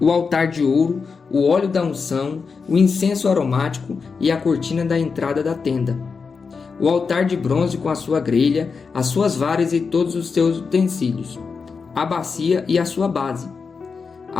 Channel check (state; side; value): quieter; right; 5.2 dB